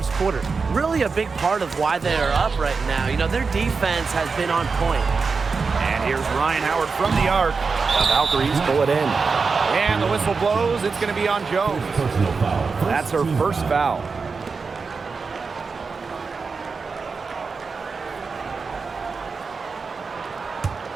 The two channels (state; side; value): quieter; left; 4.8 dB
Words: quarter. Really a big part of why they are up right now. You know, their defense has been on point. And here's Ryan Howard from the arc. The Valkyries pull it in. And the whistle blows. It's going to be on Jones. That's her first foul.